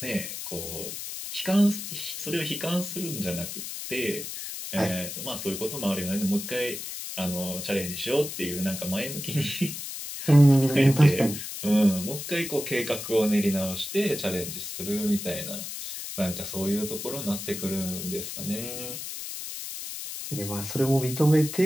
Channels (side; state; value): left; noise; hiss, 7 dB below the sound